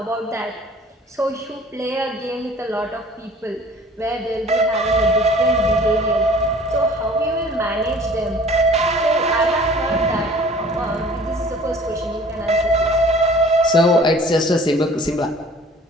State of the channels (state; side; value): normal; both; correlation 0.49